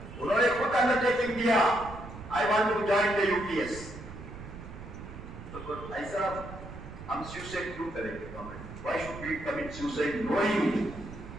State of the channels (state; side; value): noise; right; rumble, 13 dB below the sound